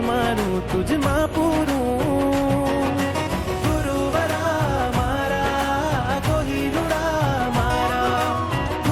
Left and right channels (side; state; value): both; identical; correlation 1.00